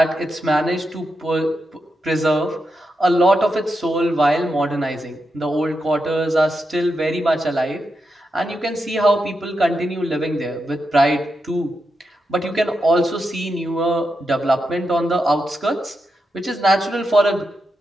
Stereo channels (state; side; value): normal; both; correlation 0.86